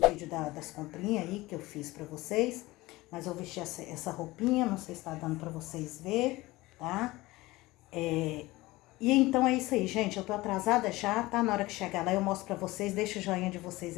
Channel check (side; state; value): right; quieter; 19.8 dB